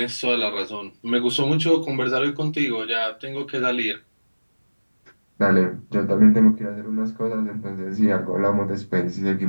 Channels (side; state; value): both; inverted; correlation -1.00